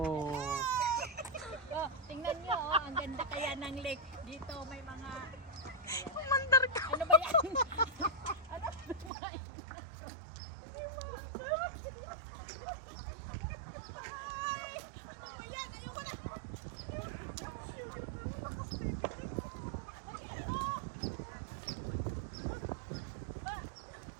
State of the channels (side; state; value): left; drops out; at 9.1 s